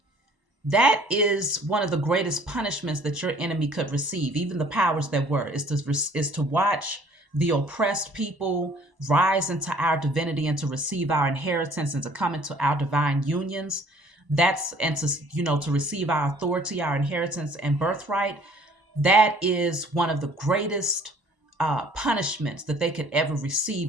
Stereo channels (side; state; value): left; late; 1.0 ms